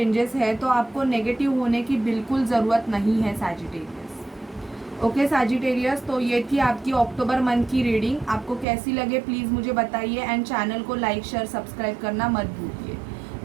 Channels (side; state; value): left; drops out; at 8.7 s